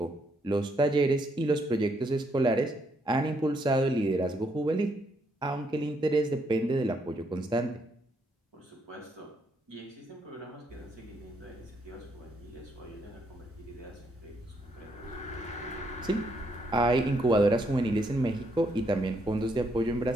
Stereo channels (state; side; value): normal; both; correlation 0.74